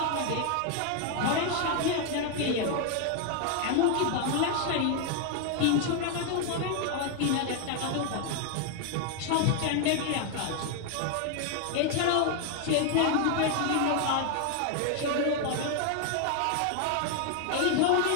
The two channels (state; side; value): different; both; correlation 0.00